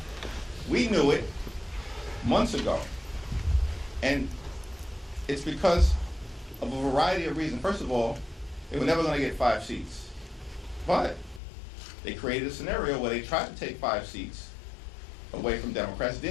We knew it months ago. And it's because of a variety of reasons. First of all, they were never going to get 5 seats. But they created a scenario where they tried to take 5 seats away from Democrats,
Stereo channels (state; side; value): drops out; right; at 11.4 s